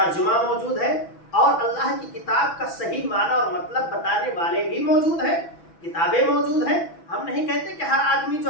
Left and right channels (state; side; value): late; right; 6.1 ms